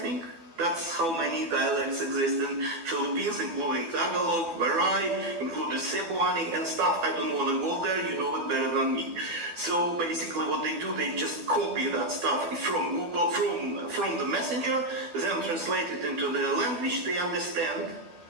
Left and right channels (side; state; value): left; late; 12 ms